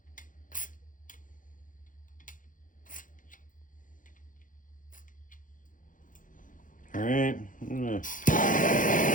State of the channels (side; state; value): right; late; 0.38 ms